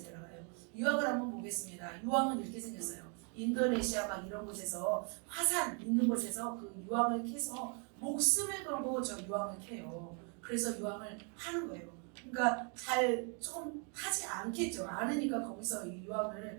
들어가요. 유황을 한번 보겠습니다. 유황은 이렇게 생겼어요. 인도네시아 막 이런 곳에서 화산 있는 곳에서 그 유황을 캐서 목숨을 걸고 저 유황을 캐요. 그래서 유황을 파는 거예요. 그러니까 잘 조금 하지 않겠죠. 않으니까 거기서 이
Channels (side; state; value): left; quieter; 38.0 dB